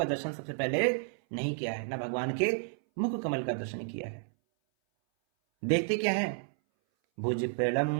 दर्शन सबसे पहले नहीं किया है, ना भगवान के मुख कमल का दर्शन किया है। देखते क्या है भुज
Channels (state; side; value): silent; left; 57 dB below the other